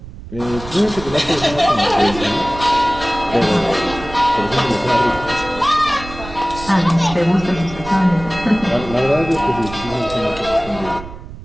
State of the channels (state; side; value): noise; right; rumble, 13 dB below the sound